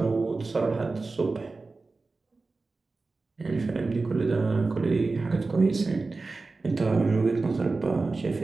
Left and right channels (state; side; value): quieter; left; 3.7 dB